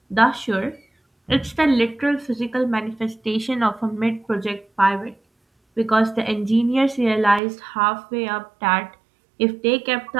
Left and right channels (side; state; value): left; drops out; at 7.4 s